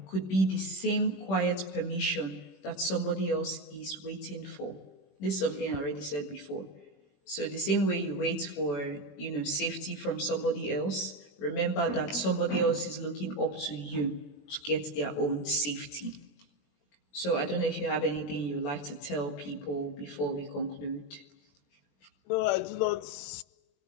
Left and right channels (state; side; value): late; right; 21 ms